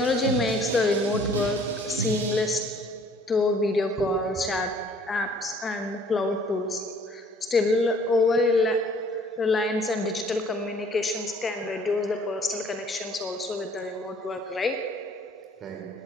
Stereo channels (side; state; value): both; normal; correlation 0.57